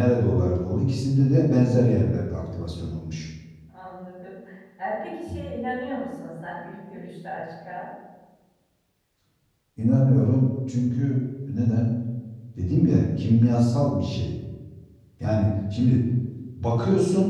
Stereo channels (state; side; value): identical; both; correlation 1.00